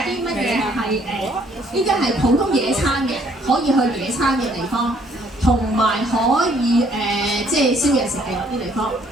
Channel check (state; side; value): normal; both; correlation 0.64